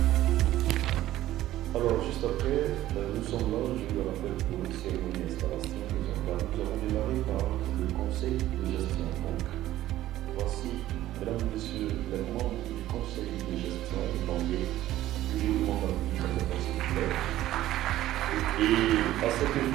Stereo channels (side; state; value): left; quieter; 14.3 dB